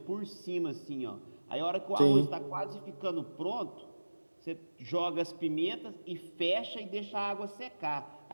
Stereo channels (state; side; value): inverted; both; correlation -1.00